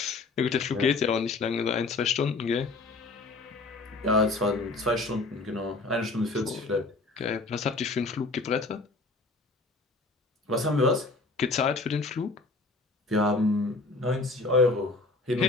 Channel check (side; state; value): right; quieter; 3.5 dB